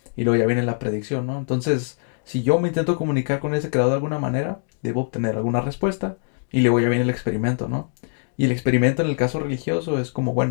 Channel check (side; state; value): right; silent; digital silence